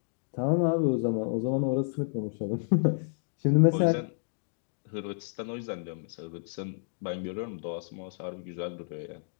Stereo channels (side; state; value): right; silent; digital silence